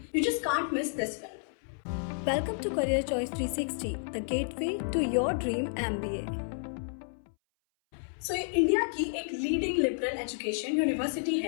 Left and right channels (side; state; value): right; silent; 57 dB below the other